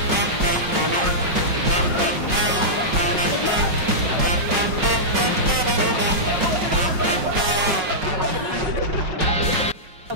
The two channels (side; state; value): left; late; 5.4 ms